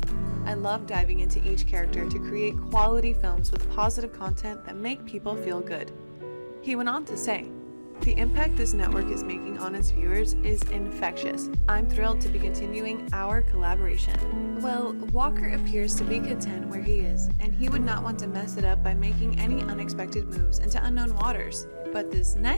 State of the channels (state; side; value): inverted; both; correlation -1.00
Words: I love diving into each character to create quality films with positive content that make people feel good. He went on to say, the impact this network is making on its viewers is infectious. I'm thrilled to be continuing our collaboration. Well, Walker appears to be content where he is, and he would not want to mess it up by making any unexpected moves into unknown waters. But this